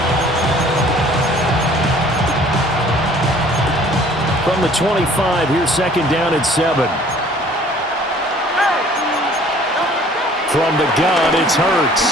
From the 25, here's second down at 7. From the gun, it's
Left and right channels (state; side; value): normal; both; correlation 0.53